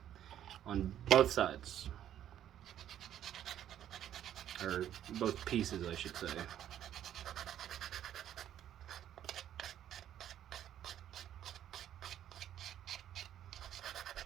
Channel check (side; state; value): left; quieter; 10.9 dB